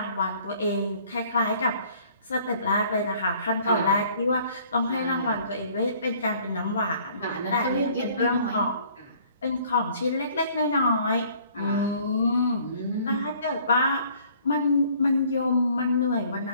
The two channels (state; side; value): inverted; both; correlation -0.57